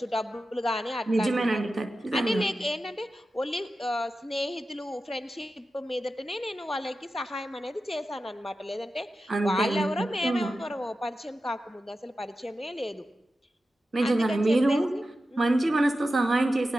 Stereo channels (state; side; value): normal; both; correlation 0.92